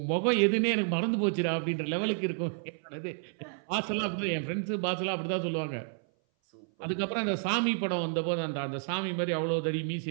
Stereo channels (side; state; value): left; silent; 57 dB below the other